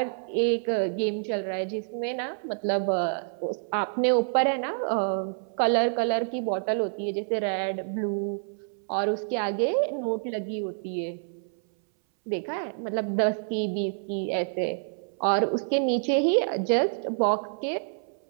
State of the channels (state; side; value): silent; left; 60 dB below the other